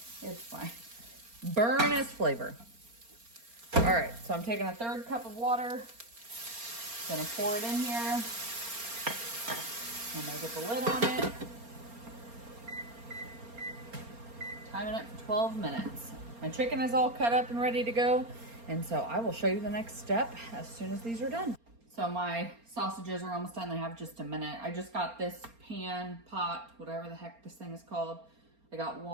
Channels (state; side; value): late; left; 4.3 ms